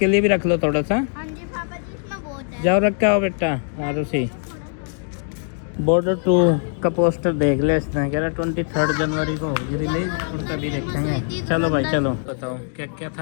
लिए भी रख लो थोड़ा सा। जाओ रखा हो बेटा। और उसी बॉर्डर 2 का पोस्टर देख ले, इसने कह रहा 23 जनवरी को होगी रिलीज, उनका भी देखेंगे। चलो भाई चलो, बताओ क्या क्या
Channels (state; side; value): silent; right; 59 dB below the other